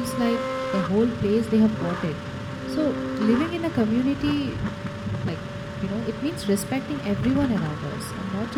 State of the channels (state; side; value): identical; both; correlation 1.00